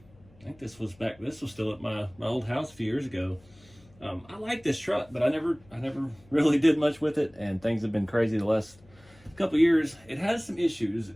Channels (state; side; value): noise; left; hum, 27 dB below the sound